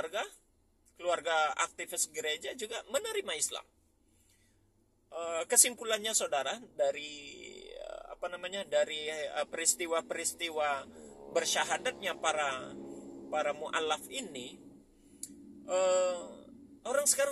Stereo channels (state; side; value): identical; both; correlation 1.00